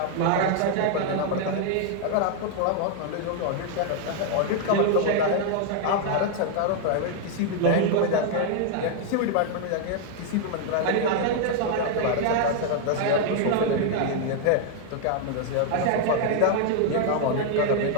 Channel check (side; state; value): both; different; correlation 0.00